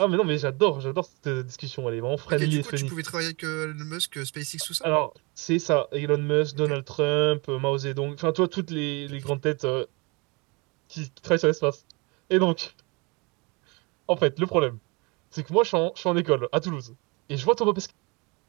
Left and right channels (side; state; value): left; quieter; 28.5 dB